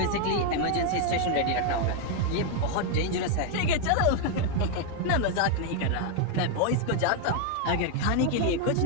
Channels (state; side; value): different; both; correlation 0.01